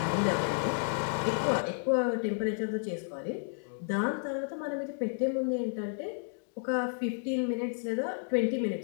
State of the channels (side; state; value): right; silent; digital silence